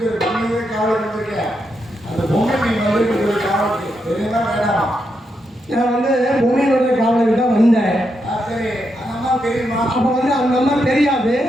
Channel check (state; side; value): normal; both; correlation 0.82